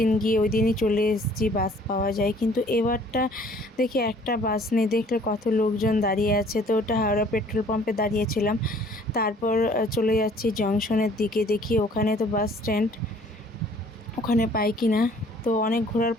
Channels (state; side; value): normal; both; correlation 0.56